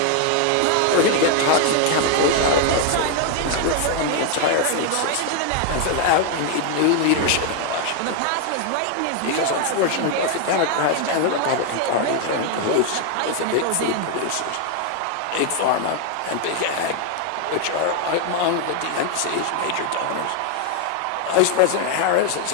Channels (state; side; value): different; both; correlation 0.00